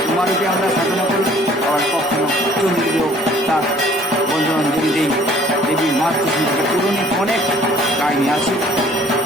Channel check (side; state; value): both; normal; correlation 0.56